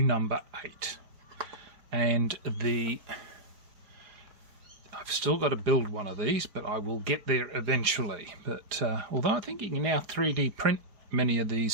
8. And I've still got to build one of these, but I will get there eventually. But although I think you can now 3D print many of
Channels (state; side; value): late; left; 4.9 ms